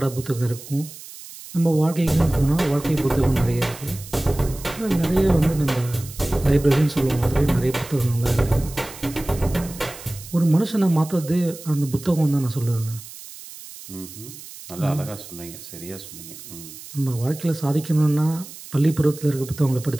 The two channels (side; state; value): right; noise; hiss, 15 dB below the sound